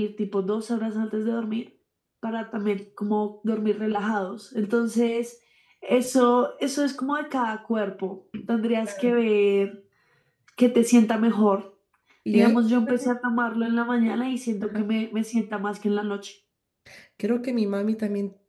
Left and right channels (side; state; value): both; identical; correlation 1.00